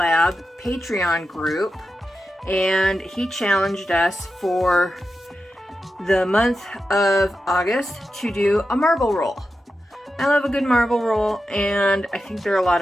Patreon group. And he challenged us for the month of August to do a marble roll. I love a good marble roll, and I think they're a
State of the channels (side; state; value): both; normal; correlation 0.91